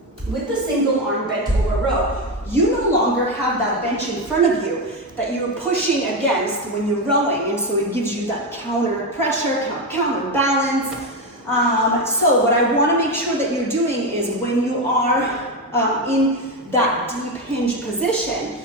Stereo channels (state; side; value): normal; both; correlation 0.12